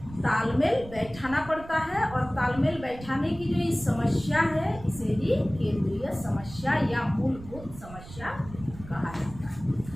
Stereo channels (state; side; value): noise; right; rumble, 16 dB below the sound